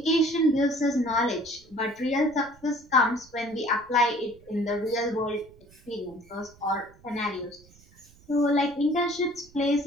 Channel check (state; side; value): noise; right; rumble, 26 dB below the sound